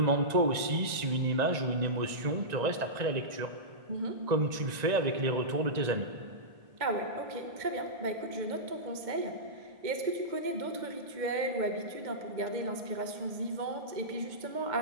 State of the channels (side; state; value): left; late; 1.9 ms